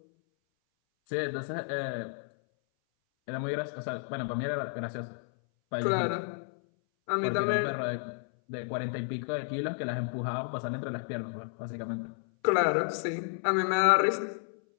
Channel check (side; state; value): right; silent; 57 dB below the other